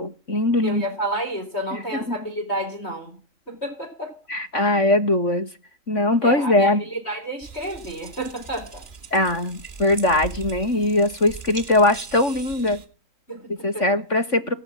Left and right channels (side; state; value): right; late; 2.9 ms